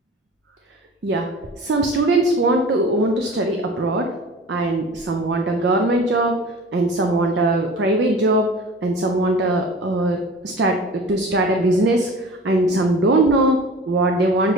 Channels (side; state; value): both; normal; correlation 0.40